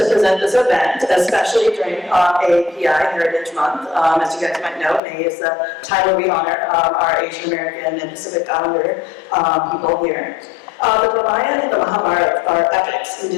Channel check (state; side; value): drops out; right; at 5.0 s